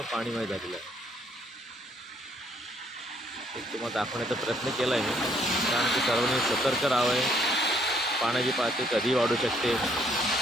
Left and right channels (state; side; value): normal; both; correlation 0.67